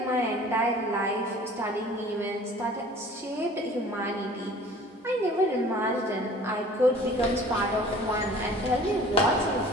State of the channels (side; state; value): both; normal; correlation 0.48